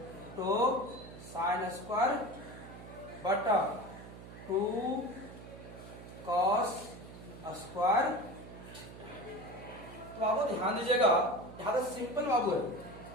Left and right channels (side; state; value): right; noise; hum, 15 dB below the sound